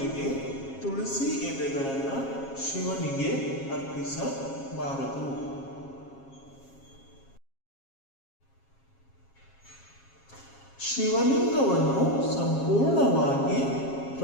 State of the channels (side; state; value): right; late; 7.4 ms